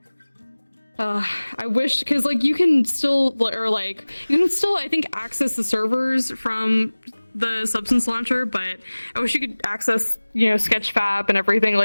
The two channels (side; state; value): both; inverted; correlation -1.00